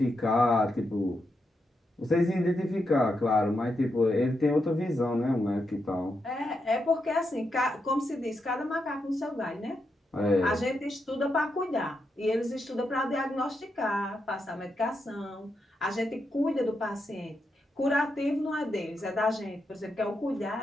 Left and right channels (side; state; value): both; normal; correlation 0.84